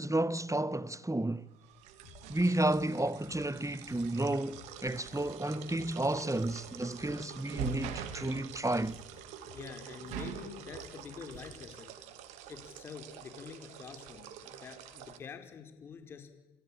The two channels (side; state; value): both; normal; correlation 0.78